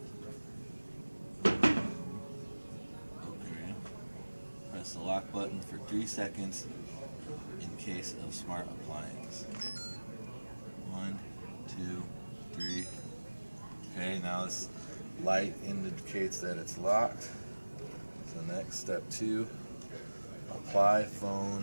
Okay. Press the lock button for 3 seconds in case of smart appliance. 1, 2, 3. Okay, now this light indicates that it's locked. So next, step 2, apply phone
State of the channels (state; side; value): inverted; both; correlation -1.00